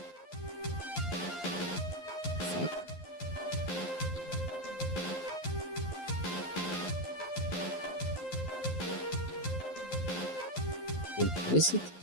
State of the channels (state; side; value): late; right; 11 ms